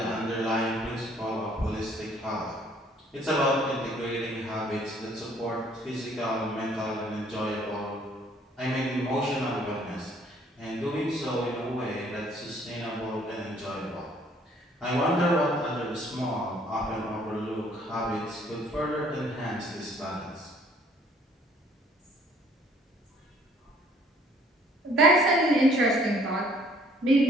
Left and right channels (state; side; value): normal; both; correlation 0.60